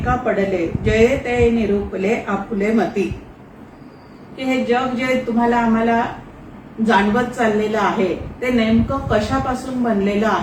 पडले जये ते निरूपले आपुले मती. की हे जग जे तुम्हाला आम्हाला जाणवत चाललेलं आहे ते नेमकं कशापासून बनलेलं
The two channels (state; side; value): identical; both; correlation 1.00